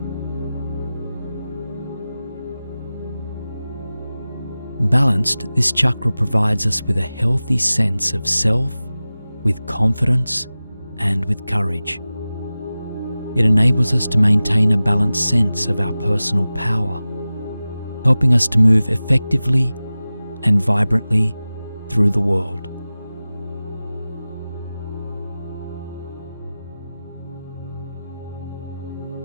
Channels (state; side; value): inverted; both; correlation -0.96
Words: Balanced, this chakra provides us with a healthy sense of self, with confidence, and with courage. It enables us to maintain a balanced sense of our personal power, helping us to move effectively and vibrantly through the world.